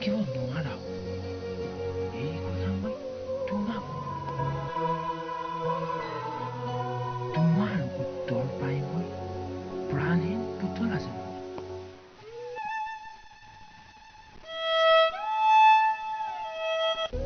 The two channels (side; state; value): both; identical; correlation 1.00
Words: নোৱাৰা। এই কথা মই তোমাক তোমাৰ উত্তৰ পাই মই প্ৰাণহীন পুতলা যেন